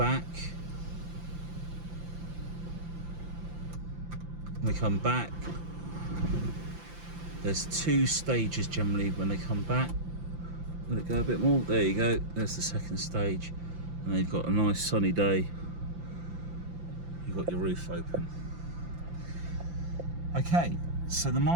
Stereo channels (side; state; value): left; late; 5.8 ms